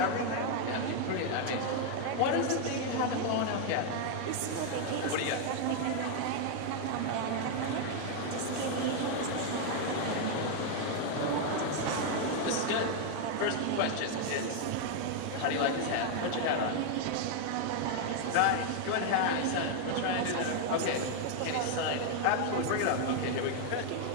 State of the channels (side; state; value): both; different; correlation 0.00